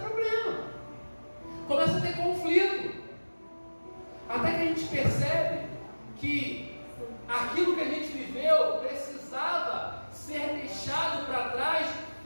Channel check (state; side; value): inverted; both; correlation -1.00